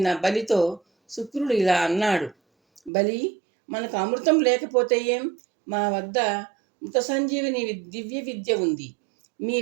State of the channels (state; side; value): drops out; left; at 2.9 s